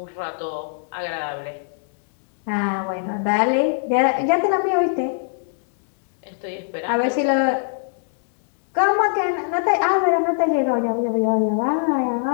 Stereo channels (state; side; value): silent; right; digital silence